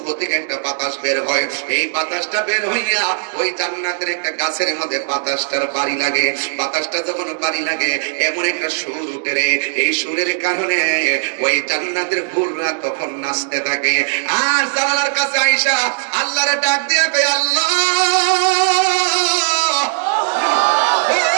থেকে একটা বাতাস বের হয়। এই বাতাসটা বের হইয়া ওই জান্নাতের একটা গাছের মধ্যে বাতাসটার বাড়ি লাগে। বাতাসটা যখন বাড়ি লাগে এমন একটা সুর উঠে রে, এই সুরের কারণে ওই জান্নাতের হুররা তখন নাচতে থাকে। আর জানালার কাছে আয়েশা আল্লাহরে ডাক দিয়া কয়, আল্লাহ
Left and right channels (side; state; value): left; silent; 68 dB below the other